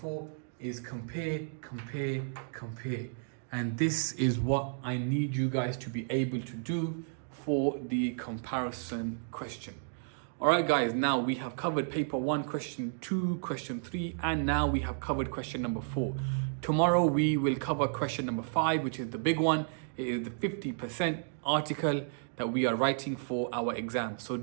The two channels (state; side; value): silent; left; digital silence